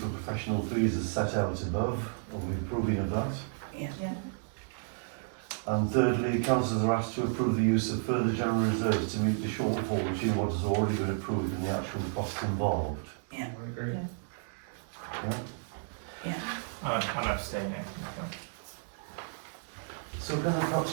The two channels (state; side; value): silent; left; digital silence